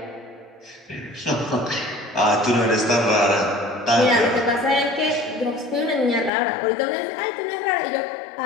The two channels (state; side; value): drops out; right; at 6.3 s